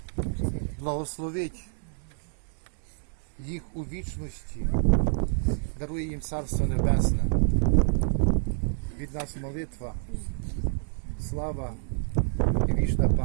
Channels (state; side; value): silent; left; 59 dB below the other